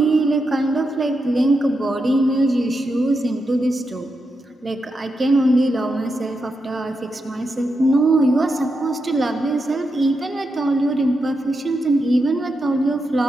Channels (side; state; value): both; normal; correlation 0.86